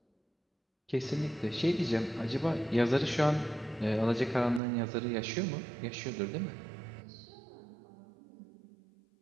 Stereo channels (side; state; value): left; drops out; at 4.6 s